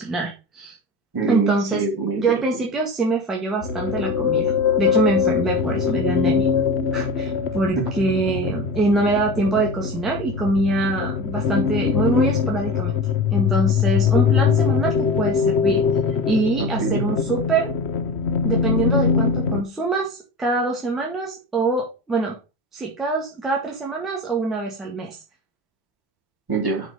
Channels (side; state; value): both; normal; correlation 0.29